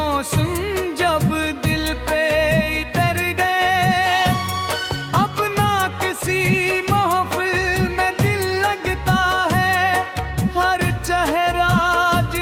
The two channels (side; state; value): both; identical; correlation 1.00